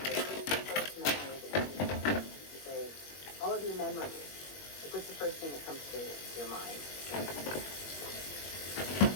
Like, what's the first memory that you say, all of your memories. Like, what's the first thing that comes to your mind?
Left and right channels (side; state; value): right; late; 21 ms